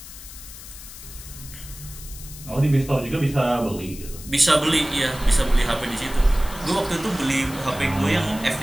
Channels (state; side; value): noise; left; hiss, 15 dB below the sound